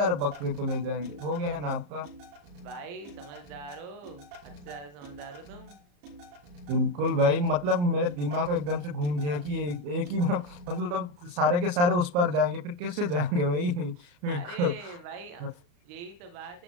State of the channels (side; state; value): left; late; 34 ms